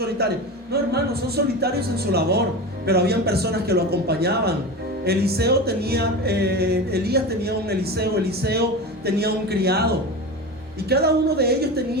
No, hermanos, son solitarios en su labor, pero habían personas que lo acompañaban. Elías tenía un Eliseo tenía un criado, y cada uno de ellos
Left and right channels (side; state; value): both; normal; correlation 0.26